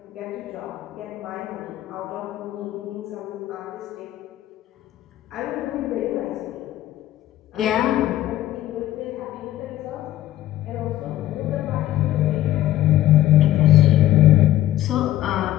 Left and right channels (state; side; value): quieter; right; 14.1 dB